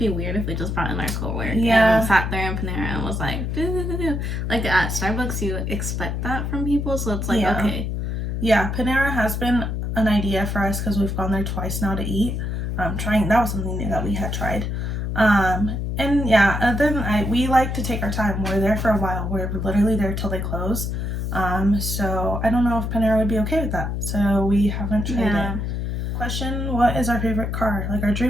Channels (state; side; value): noise; left; hum, 2 dB below the sound